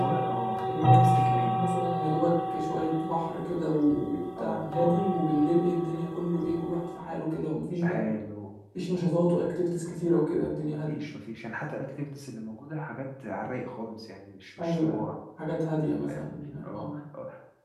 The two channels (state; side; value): identical; both; correlation 1.00